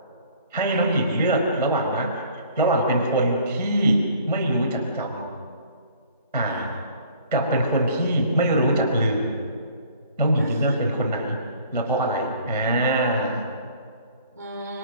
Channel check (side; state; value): both; inverted; correlation -0.54